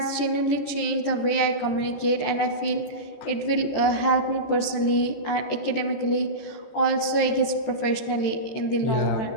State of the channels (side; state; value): right; late; 14 ms